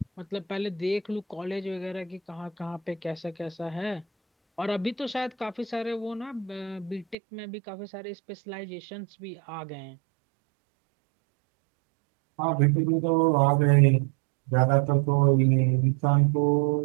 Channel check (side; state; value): left; drops out; at 7.2 s